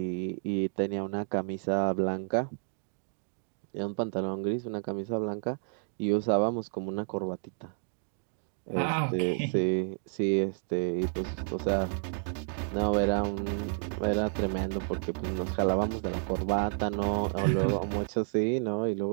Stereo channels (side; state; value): left; silent; digital silence